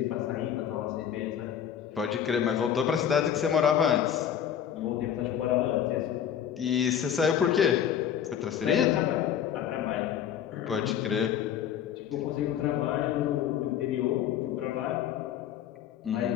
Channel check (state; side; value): quieter; right; 9.4 dB